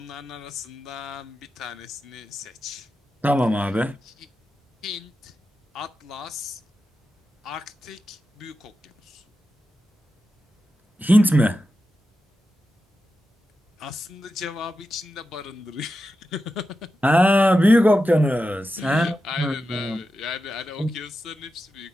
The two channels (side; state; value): both; normal; correlation 0.90